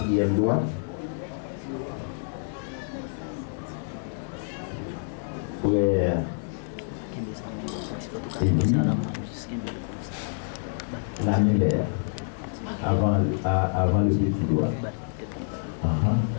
doigt. Frère Élie, l'annulaire, avant le petit doigt.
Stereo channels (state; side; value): silent; right; digital silence